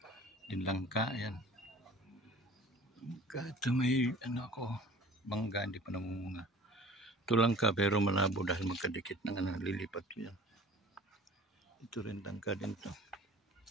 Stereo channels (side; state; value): both; normal; correlation 0.45